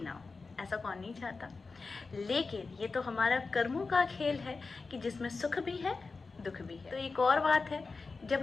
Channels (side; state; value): right; quieter; 4.2 dB